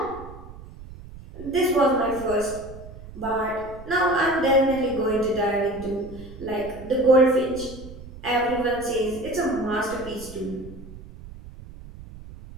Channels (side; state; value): right; noise; rumble, 15 dB below the sound